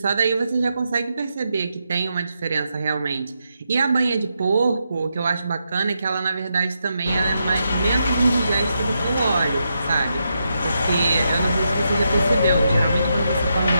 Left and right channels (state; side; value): inverted; both; correlation -0.83